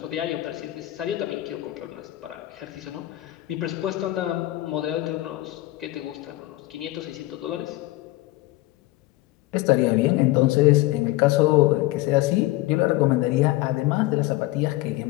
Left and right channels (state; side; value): quieter; right; 18.0 dB